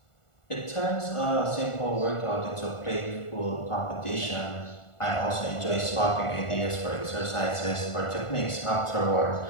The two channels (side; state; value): right; late; 1.4 ms